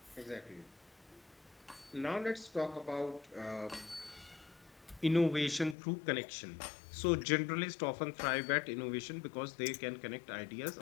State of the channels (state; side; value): drops out; right; at 5.8 s